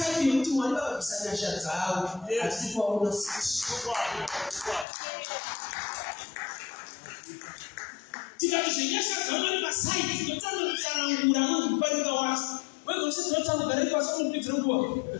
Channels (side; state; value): right; drops out; at 4.9 s